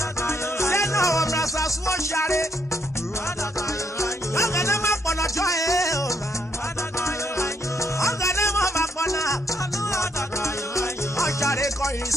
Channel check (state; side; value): normal; both; correlation 0.74